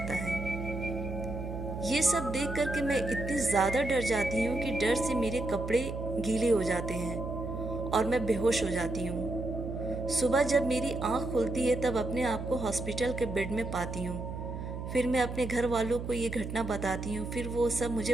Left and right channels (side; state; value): right; noise; hum, 6 dB below the sound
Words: है। ये सब देख करके मैं इतनी ज़्यादा डर जाती हूँ कि डर से मेरे कपड़े गीले हो जाते हैं और मैं बेहोश हो जाती हूँ। सुबह जब मेरी आँख खुलती है तब अपने आप को हॉस्पिटल के बेड में पाती हूँ। फिर मैं अपने घर वालों को ये घटना बताती हूँ। फिर वो सब